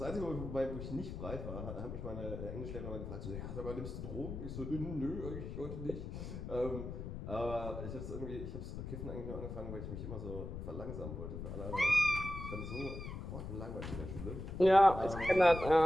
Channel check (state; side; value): noise; left; rumble, 7 dB below the sound